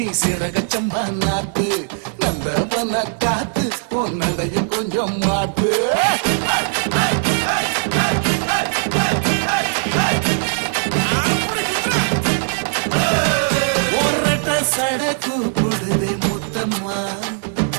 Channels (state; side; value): silent; left; 59 dB below the other